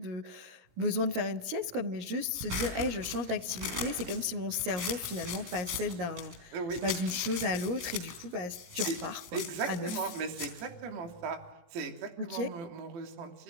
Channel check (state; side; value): late; left; 17 ms